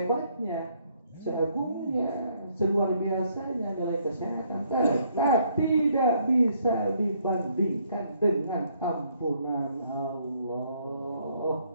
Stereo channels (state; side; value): inverted; both; correlation -0.68